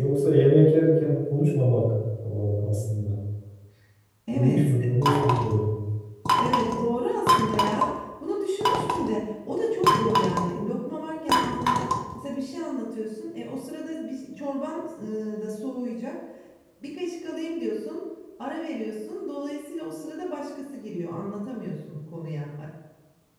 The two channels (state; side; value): identical; both; correlation 1.00